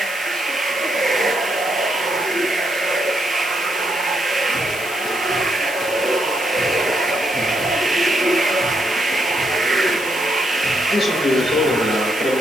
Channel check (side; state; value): left; noise; hiss, 13 dB below the sound